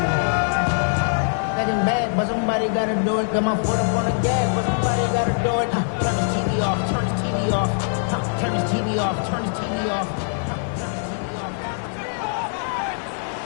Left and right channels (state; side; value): silent; right; digital silence